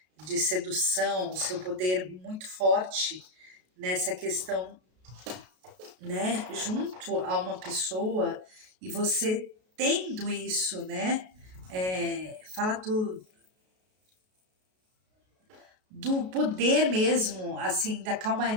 de sedução, o seu poder muito forte nessa questão, né? Junto a uma pessoa e você tendo isso, né? Fala do poder mesmo, assim, da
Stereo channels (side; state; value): left; late; 33 ms